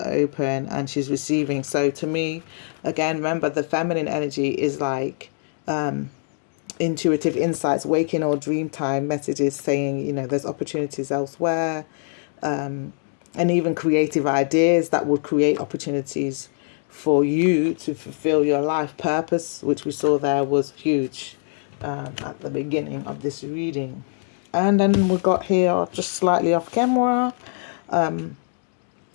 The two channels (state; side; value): silent; right; digital silence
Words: open and she's receiving. So to me, again, remember the feminine energy is like, intuitive insights, waking or dream time messages saying, you know, there's opportunities elsewhere, and even creative ideas that would create opportunities for you to fulfill your life purpose, which we saw there was huge at the beginning of this reading. And then we got here just slightly off camera.